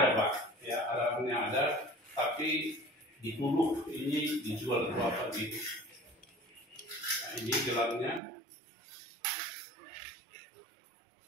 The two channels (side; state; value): left; drops out; at 8.2 s